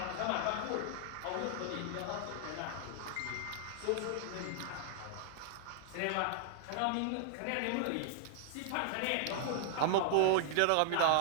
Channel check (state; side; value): different; both; correlation 0.00